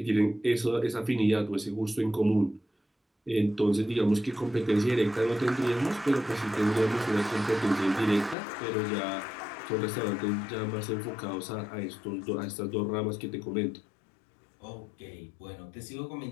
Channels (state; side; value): drops out; right; at 8.3 s